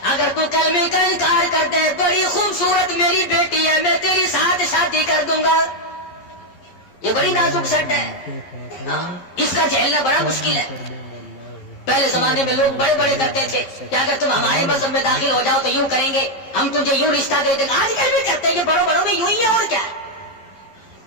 اگر تو کلمے کا انکار کر دے, بڑی خوبصورت میری بیٹی ہے, میں تیری ساتھ شادی کر دوں گا. یہ بڑی نازک سٹ ہے, اس کا جھیلنا بڑا مشکل ہے. پہلے زمانے میں لوگ بڑے بڑے کرتے تھے کہ اگر تم ہمارے مذہب میں داخل ہو جاؤ تو یوں کریں گے, ہم تجھے یوں رشتہ دے دیں گے. آج کل بھی کرتے ہیں, یہ بڑوں بڑوں میں یوں ہی ہے, اور کیا ہے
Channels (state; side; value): late; right; 11 ms